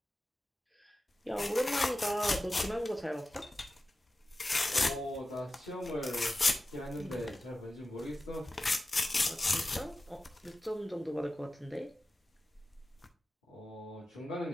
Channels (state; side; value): normal; both; correlation 0.94